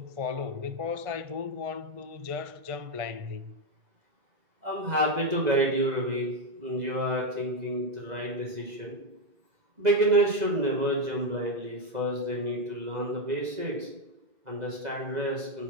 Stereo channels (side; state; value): left; late; 2.0 ms